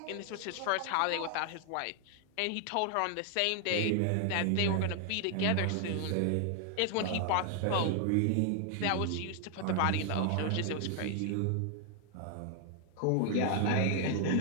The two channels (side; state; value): both; different; correlation 0.00